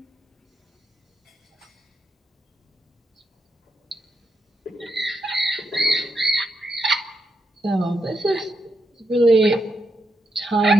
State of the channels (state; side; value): normal; both; correlation 0.83